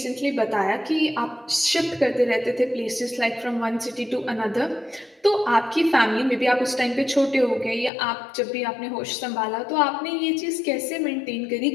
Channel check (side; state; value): right; drops out; at 7.9 s